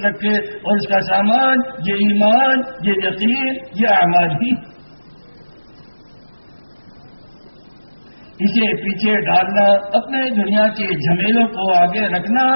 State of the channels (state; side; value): inverted; both; correlation -1.00